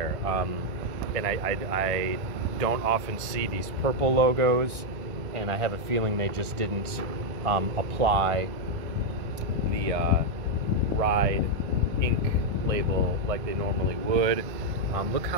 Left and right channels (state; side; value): late; left; 1.3 ms